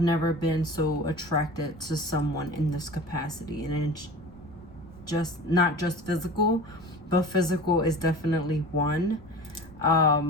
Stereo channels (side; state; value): right; noise; rumble, 21 dB below the sound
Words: never been so attracted to someone in this capacity, and it's just not just physical, but physical is definitely one.